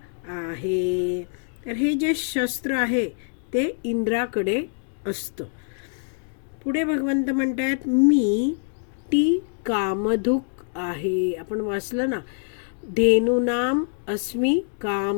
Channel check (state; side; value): silent; right; 62 dB below the other